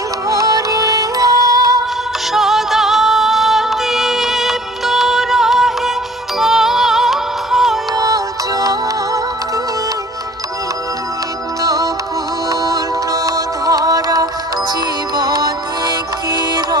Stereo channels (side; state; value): both; normal; correlation 0.52